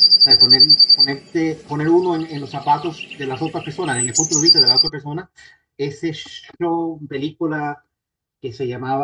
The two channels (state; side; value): identical; both; correlation 1.00